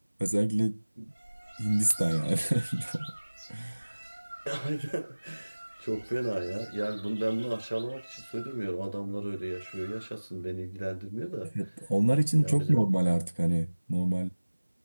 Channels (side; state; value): both; inverted; correlation -1.00